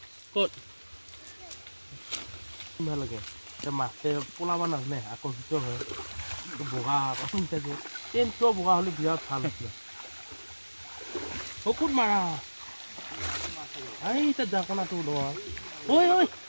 ক'ত ভাল লাগে এতিয়া মাছে পলাব নাজানে আকৰ্ষিত হয় বগা থাকে টেনটো বগা হ'লে বিৰাট ভাল আছিলে ক'ত মাৰা এই তাত যা কোণাটো লোৱা ঐ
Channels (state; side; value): inverted; both; correlation -1.00